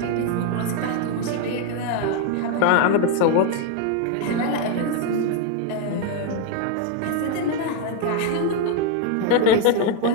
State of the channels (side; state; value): both; different; correlation 0.01